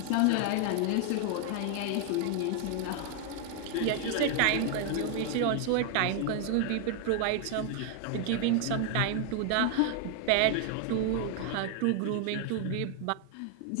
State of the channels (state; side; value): different; both; correlation 0.00